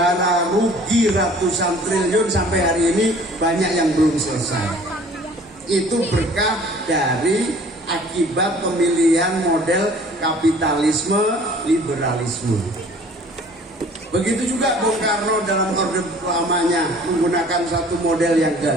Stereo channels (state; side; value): normal; both; correlation 0.51